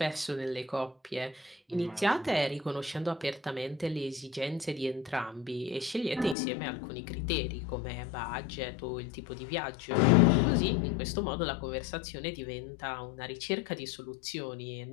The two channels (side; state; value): right; drops out; at 6.4 s